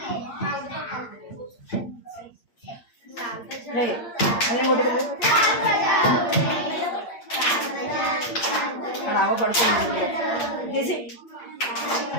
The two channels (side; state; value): right; late; 8.7 ms